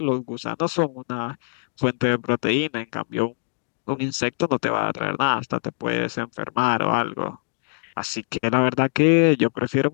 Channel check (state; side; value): silent; right; digital silence